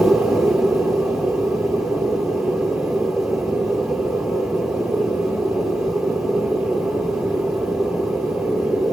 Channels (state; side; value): normal; both; correlation 0.90